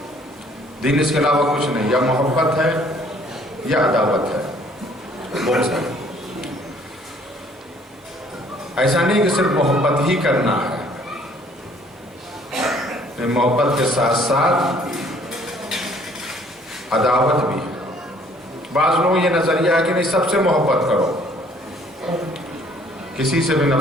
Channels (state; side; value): normal; both; correlation 0.59